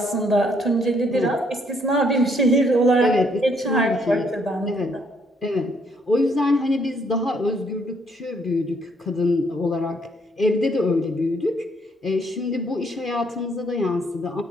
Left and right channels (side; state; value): both; normal; correlation 0.68